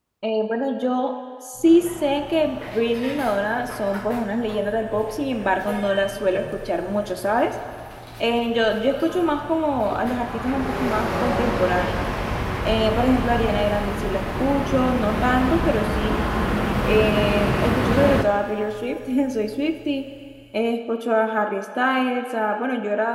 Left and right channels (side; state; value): both; identical; correlation 1.00